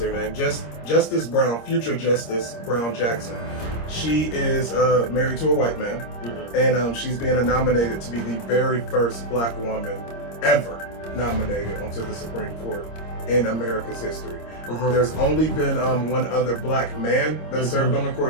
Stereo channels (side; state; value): right; late; 26 ms